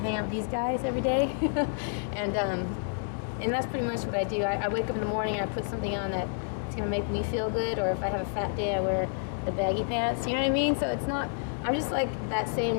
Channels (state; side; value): silent; right; digital silence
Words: out with these guys every day, and that's pretty much what I do. I wake up in the morning, I put something on that it's gonna make me feel good, or if I have a fat day, I wear the baggy pants. You know what I mean? So it's not. I'm just like that